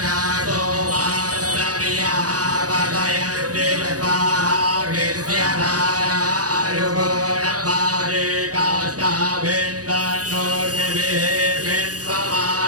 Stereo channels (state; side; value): late; left; 0.67 ms